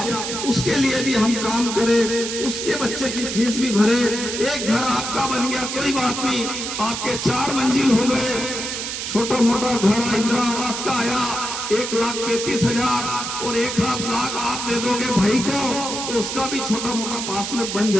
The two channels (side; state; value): right; noise; hiss, 5 dB below the sound